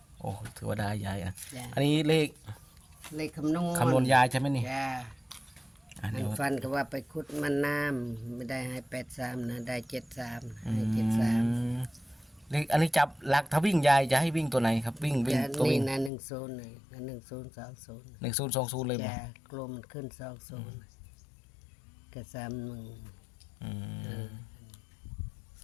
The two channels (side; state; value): right; drops out; at 16.1 s